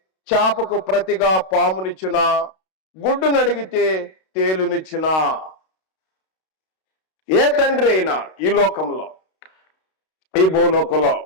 చేపకు ప్రతిగా పామునిచ్చునా, గుడ్డును అడిగితే తేలునిచ్చునా? ఏ తండ్రి అయినా ఈ లోకంలో, ఈ భూలోకంలో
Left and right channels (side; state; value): right; late; 32 ms